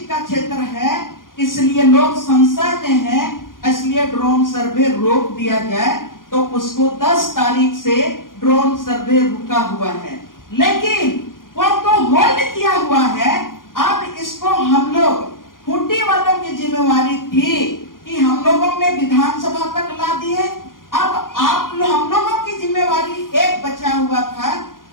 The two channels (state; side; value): late; right; 0.90 ms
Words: का क्षेत्र है, इसलिए लोग संशय में है, इसलिए ड्रोन सर्वे रोक दिया जाए। तो उसको 10 तारीख से ड्रोन सर्वे रुका हुआ है, लेकिन वो तो होल्ड किया हुआ है। अब इसको हम लोग, खूंटी वालों की जिम्मेवारी थी कि हम लोगों ने विधानसभा तक ला दी है। अब हम लोगों की जिम्मेवारी एक बचा हुआ था,